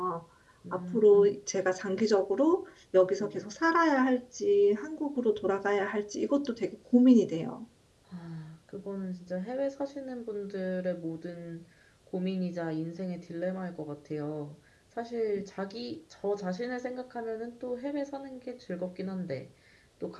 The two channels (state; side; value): identical; both; correlation 1.00